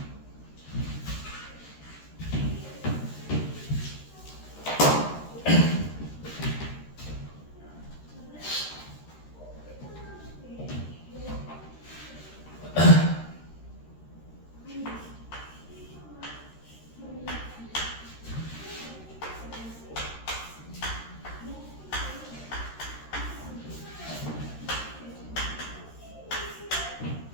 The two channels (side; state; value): right; late; 13 ms